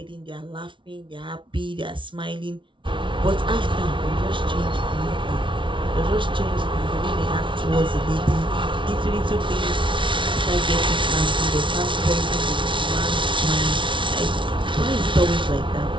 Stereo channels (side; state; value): left; late; 0.24 ms